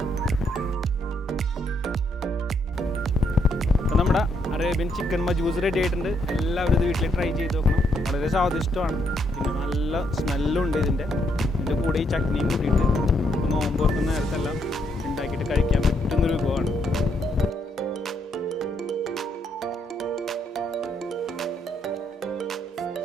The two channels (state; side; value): normal; both; correlation 0.74